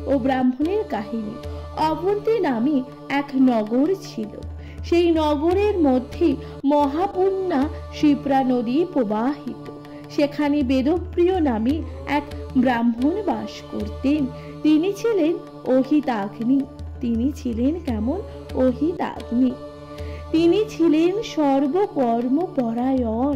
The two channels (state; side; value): identical; both; correlation 1.00